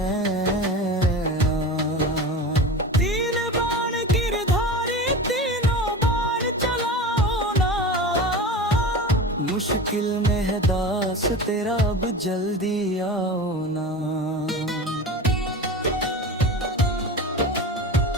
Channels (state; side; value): normal; both; correlation 0.30